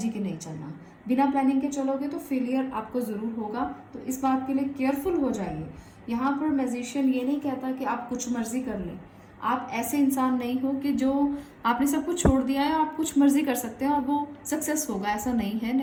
के नहीं चलना। बिना प्लानिंग के चलोगे तो फेलियर आपको ज़रूर होगा, तो इस बात के लिए केयरफुल हो जाइए। यहाँ पर मैजिशियन ये नहीं कहता कि आप कुछ मर्जी कर लें। आप ऐसे इंसान नहीं हो कि जो आपने सब कुछ छोड़ दिया है, आप कुछ मर्जी कर सकते हैं और वो सक्सेस होगा, ऐसा नहीं है।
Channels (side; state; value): both; identical; correlation 1.00